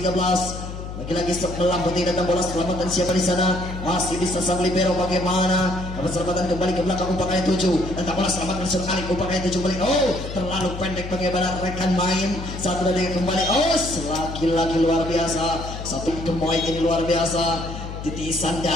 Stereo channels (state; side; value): noise; left; hum, 9 dB below the sound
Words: Lagi-lagi sebelah putih datang bola selamatan siapa di sana, masih bisa sang libero bagaimana. Dapat selamatan kembali ke belakang umpan kali 7. Datang bola selamatan Sur Alif, umpan kali 7 kembali. Terlalu pendek bagaimana rekan main. 1, 2, 3 kembali. Lagi-lagi luar biasa. Satu pemain ini luar biasa. titisan